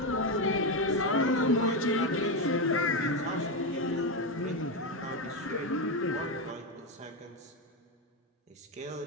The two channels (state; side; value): normal; both; correlation 0.10